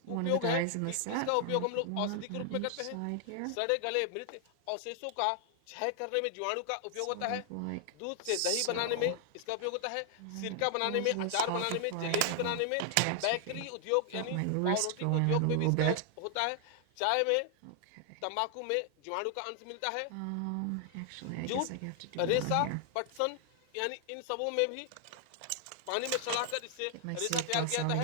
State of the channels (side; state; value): both; different; correlation 0.00